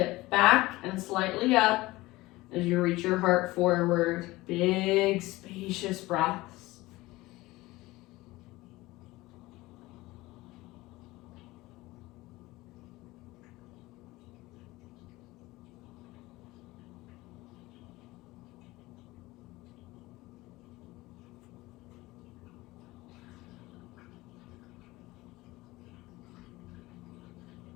back and slightly up as you reach your heart forward. Big, spacious breaths.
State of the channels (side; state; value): right; quieter; 19.6 dB